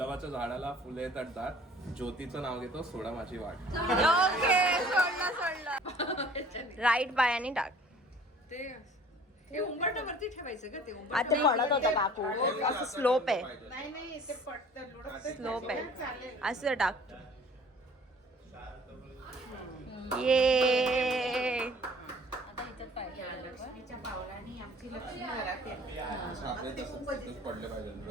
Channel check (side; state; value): both; normal; correlation 0.51